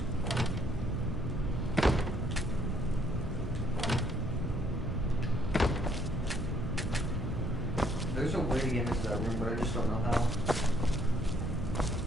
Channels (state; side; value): noise; right; hum, 9 dB below the sound